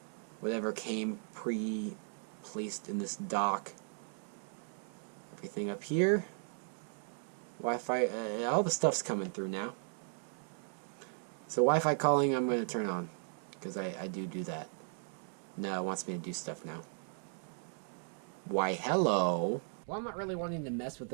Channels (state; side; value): silent; left; 53 dB below the other